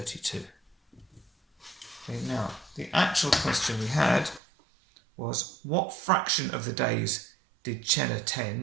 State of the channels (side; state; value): left; drops out; at 4.4 s